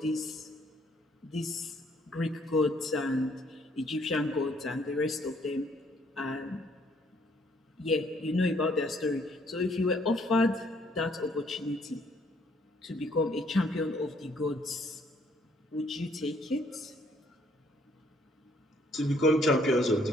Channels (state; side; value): normal; both; correlation 0.65